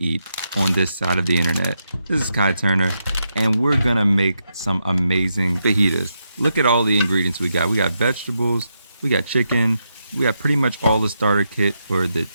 on this side of the internet. This is Khi Turner, and we're gonna make some amazing fajitas. Look at all the ingredients we got. We got vegetables, we got chicken, we got pretty much all the starter kit for the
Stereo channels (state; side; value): inverted; both; correlation -0.83